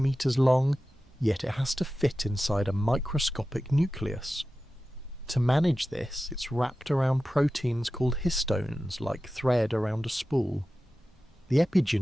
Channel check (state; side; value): normal; both; correlation 0.94